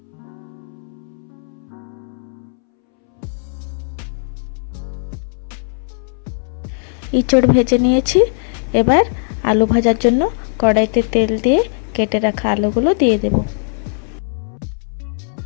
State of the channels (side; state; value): right; silent; 65 dB below the other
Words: ইঁচড় ভেজে নিয়েছি, এবার আলু ভাজার জন্য কড়াইতে তেল দিয়ে কেটে রাখা আলুগুলো দিয়ে দেব।